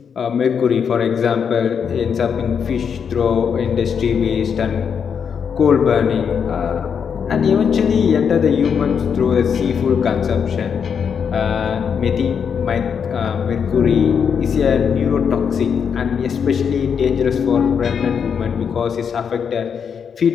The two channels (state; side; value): quieter; right; 7.0 dB